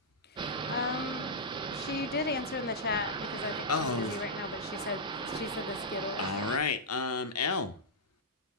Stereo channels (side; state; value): both; normal; correlation -0.09